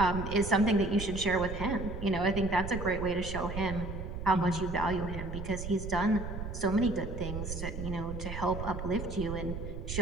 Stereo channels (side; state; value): right; noise; rumble, 6 dB below the sound